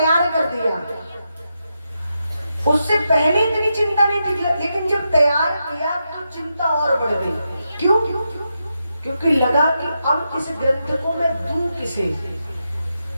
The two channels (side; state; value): both; inverted; correlation -0.86